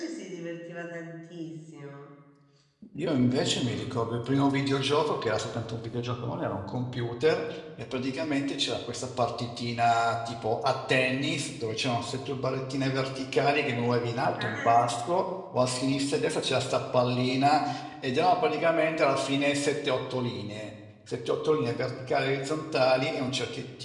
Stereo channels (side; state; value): both; identical; correlation 1.00